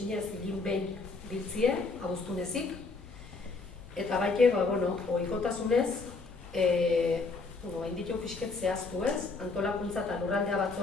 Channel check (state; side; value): quieter; right; 4.0 dB